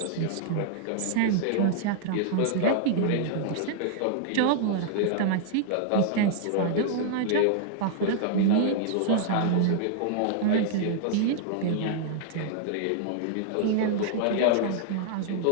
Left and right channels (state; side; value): different; both; correlation -0.01